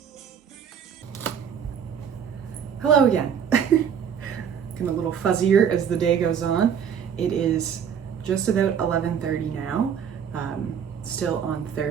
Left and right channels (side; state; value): left; quieter; 7.8 dB